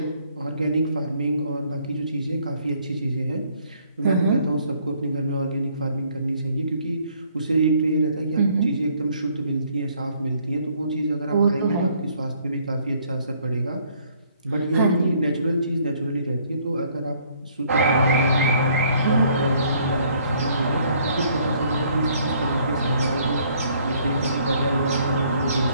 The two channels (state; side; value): inverted; both; correlation -0.64